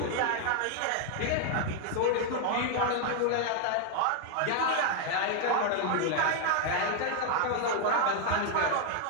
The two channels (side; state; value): both; different; correlation 0.00